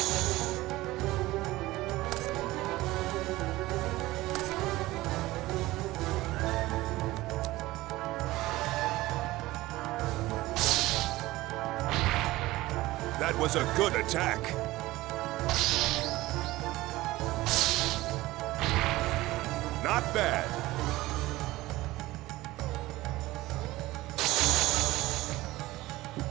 That was a good attack. Not bad.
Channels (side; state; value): left; quieter; 18.2 dB